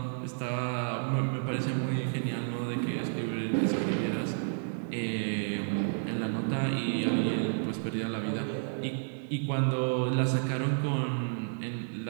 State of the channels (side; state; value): left; silent; 55 dB below the other